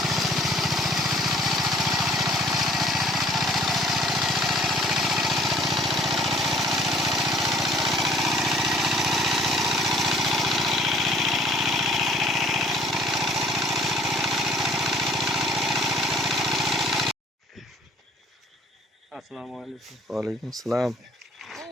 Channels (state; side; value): normal; both; correlation 0.55